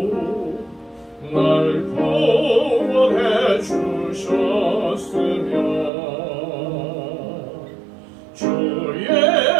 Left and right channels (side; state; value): left; drops out; at 5.9 s